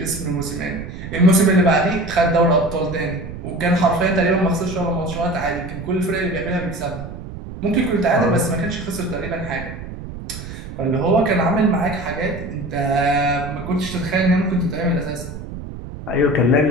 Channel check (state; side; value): noise; right; rumble, 10 dB below the sound